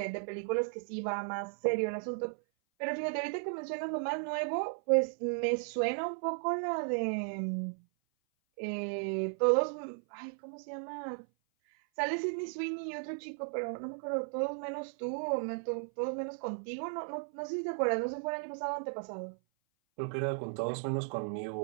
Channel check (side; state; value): left; silent; 54 dB below the other